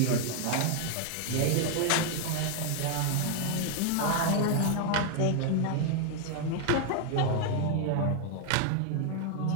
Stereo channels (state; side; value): different; both; correlation 0.00